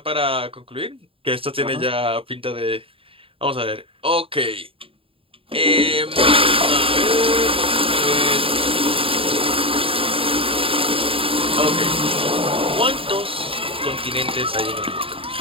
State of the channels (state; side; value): late; left; 0.27 ms